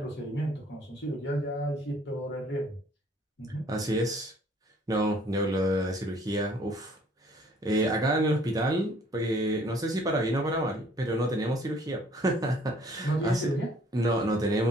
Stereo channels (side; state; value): both; normal; correlation 0.59